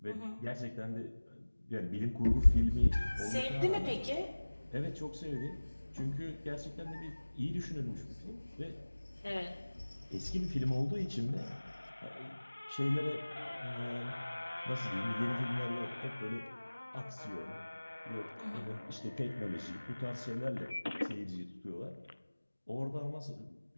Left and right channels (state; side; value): inverted; both; correlation -1.00